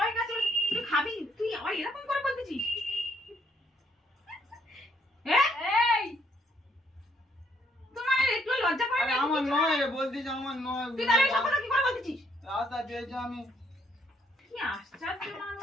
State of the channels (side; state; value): both; normal; correlation 0.69